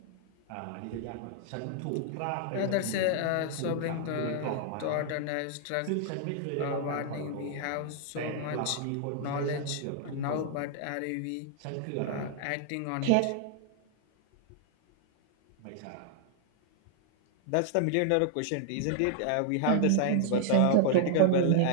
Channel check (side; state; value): both; different; correlation -0.01